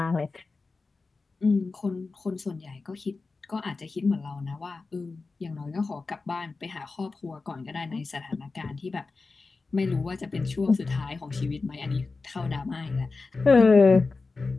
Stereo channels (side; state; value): right; quieter; 3.9 dB